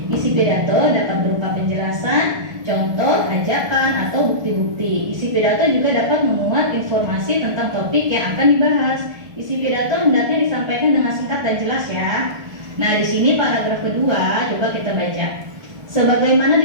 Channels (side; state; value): left; late; 1.3 ms